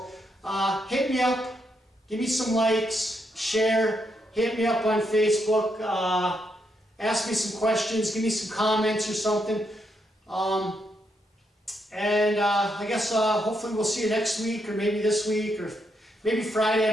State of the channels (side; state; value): both; normal; correlation 0.79